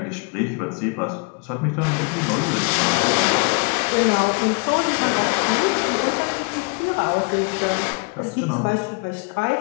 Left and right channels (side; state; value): right; quieter; 33.2 dB